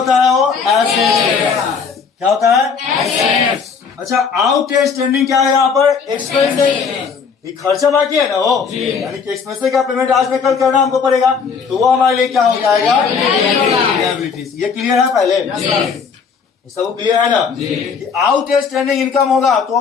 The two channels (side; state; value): right; quieter; 5.9 dB